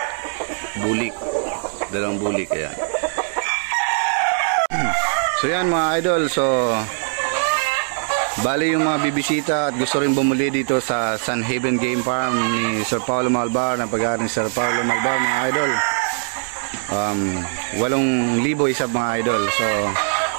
Bulik. Dalawang bulik. Ayan. So yan mga idol. So bali yung mga bibisita at gusto rin bumuli dito sa Sun Haven Game Farm ni Sir Paulo Malbar, ng pag-aaral ni Sir Paulo Malbar mga idol. 8,000 isa mga idol. So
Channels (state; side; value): silent; left; 65 dB below the other